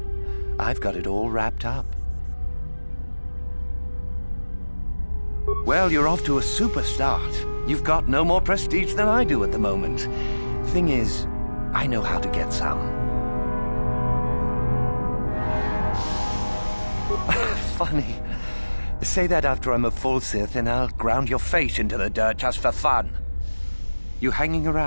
I've got it all wrapped up. Well, you're off to a super start. You've got no more prestige than I do at the moment. Thing is, I know how to get some. Funny. Say that after I'm a full Sith and I'll ground your face into the dirt just for fun. You hanging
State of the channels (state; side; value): inverted; both; correlation -1.00